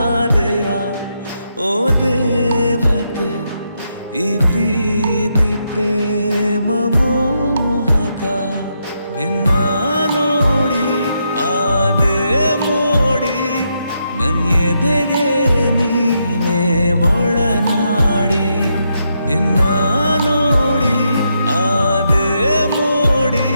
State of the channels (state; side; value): inverted; both; correlation -0.81